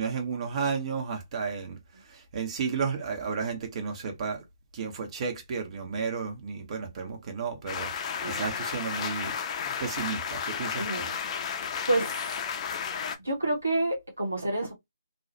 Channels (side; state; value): both; inverted; correlation -0.58